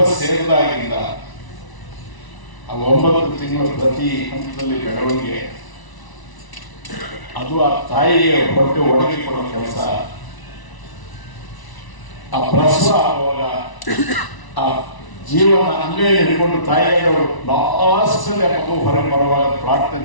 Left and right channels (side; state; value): right; late; 1.0 ms